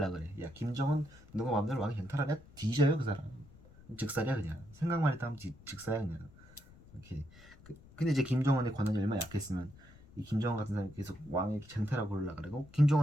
그래. 야 김정은 누가 마음대로 왕이 쟁탈하냐? 뒤져요 그 사람. 즉살이야 그냥. 생각만 했다 하면 즉사야 그냥. 이렇게 근데 이제 김정은의 권한이 얼마나 약했으면 이 김정은 같은 사람이 계속 왕의 쟁탈하고 그러려 그러고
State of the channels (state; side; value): noise; left; rumble, 22 dB below the sound